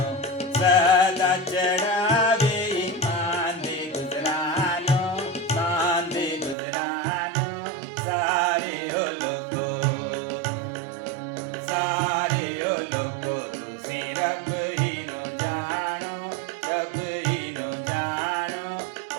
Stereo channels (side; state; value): left; drops out; at 6.6 s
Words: सदा चढ़ावे ईमान दे गुजरानो, मान दे गुजरानो। सारे हो लोगो, सारे हो लोगो तुसी रब ही नो जानो, रब ही नो जानो।